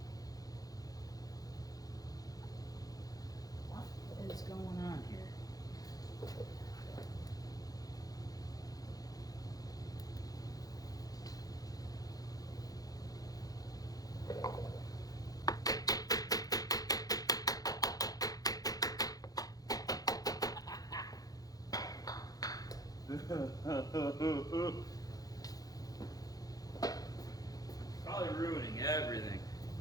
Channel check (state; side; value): late; right; 0.18 ms